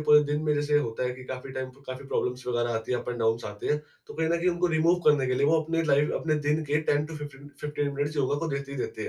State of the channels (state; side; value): identical; both; correlation 1.00